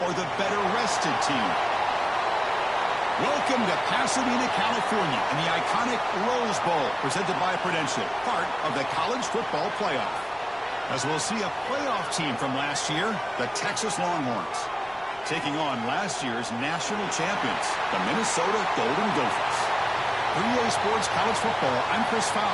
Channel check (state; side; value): identical; both; correlation 1.00